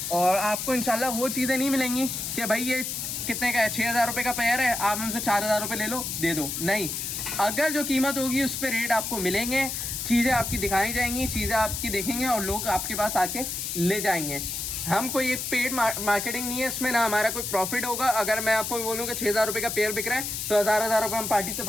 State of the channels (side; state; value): left; noise; hiss, 4 dB below the sound